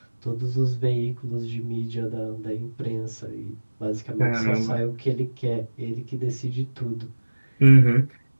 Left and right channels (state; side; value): inverted; both; correlation -1.00